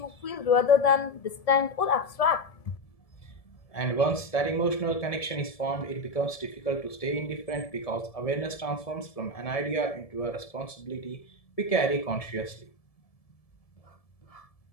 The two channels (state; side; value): late; right; 1.7 ms